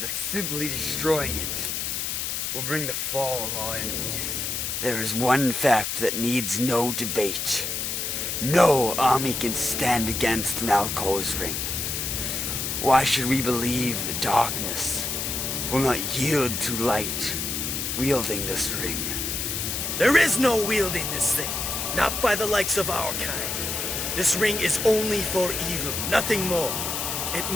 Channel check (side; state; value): left; noise; hiss, 2 dB below the sound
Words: that simply destroying it will bring the fall of our enemies? There is one fact that needs no debate. No army can stand against Nalkor's ring. Why should we believe the darkness will not yield to light wielding this ring? There is no wielding this thing, not by the likes of our kind. This ring is only for evil, nothing more. It